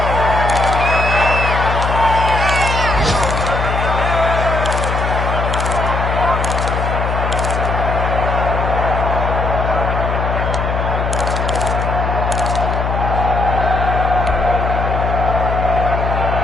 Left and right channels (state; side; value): noise; left; hum, 1 dB below the sound